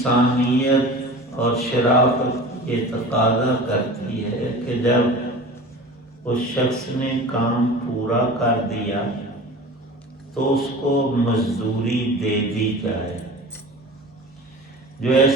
اور شرافت یہ تقاضا کرتی ہے کہ جب اس شخص نے کام پورا کر دیا تو اس کو مزدوری دے دی جائے۔ جو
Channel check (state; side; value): normal; both; correlation 0.37